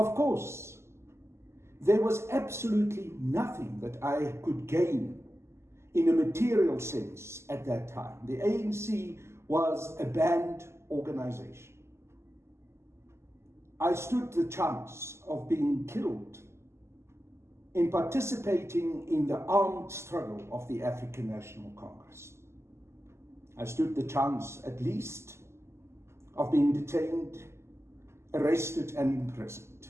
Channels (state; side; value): late; left; 0.13 ms